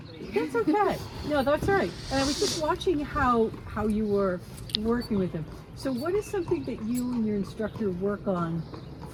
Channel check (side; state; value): both; identical; correlation 1.00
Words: That's okay. No, that's all right. And I was just watching how you were working with him. So what is something that you and your instructor work on